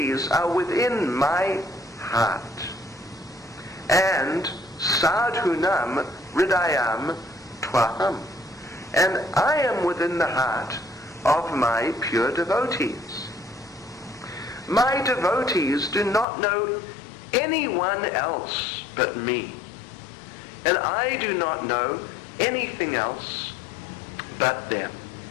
are within my heart. And Sadhunam Hridayam Twaham. And I am within the heart of my pure devotees. My devotees do not know anyone else but me. And I do not know anything else but them.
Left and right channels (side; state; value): right; drops out; at 16.2 s